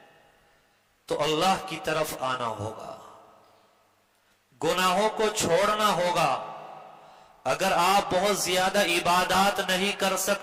تو اللہ کی طرف آنا ہوگا، گناہوں کو چھوڑنا ہوگا. اگر آپ بہت زیادہ عبادات نہیں کر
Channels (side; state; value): both; identical; correlation 1.00